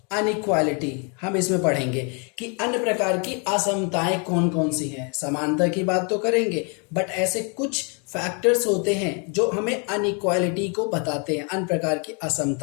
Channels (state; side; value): quieter; right; 35.7 dB